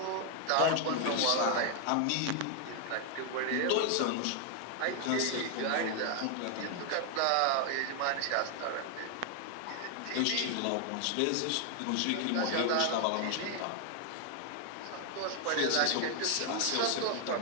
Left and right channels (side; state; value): both; different; correlation 0.00